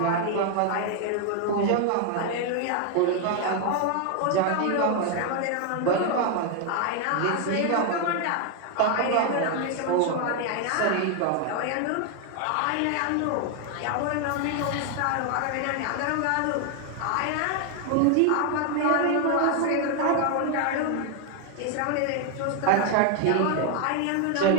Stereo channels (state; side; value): different; both; correlation 0.00